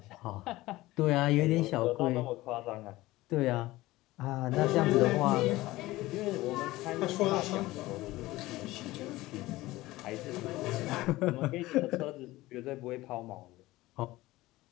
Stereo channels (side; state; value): right; quieter; 18.2 dB